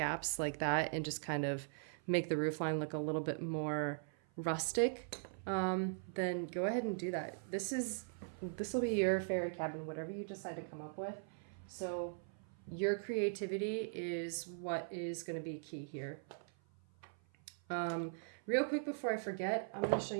like that and just kind of make the roof line look a little bit more rustic, then go ahead and do that. This will be your fairy cabin, whatever you decide to come up with. So your creativity is what is going to be key here. Real quick before I forget, I'm going to show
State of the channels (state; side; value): silent; left; 51 dB below the other